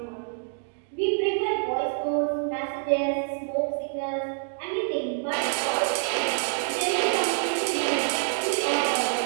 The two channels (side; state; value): left; silent; digital silence